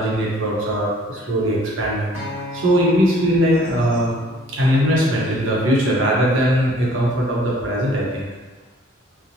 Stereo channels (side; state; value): both; normal; correlation 0.56